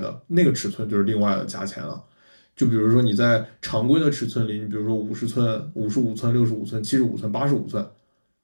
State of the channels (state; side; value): inverted; both; correlation -1.00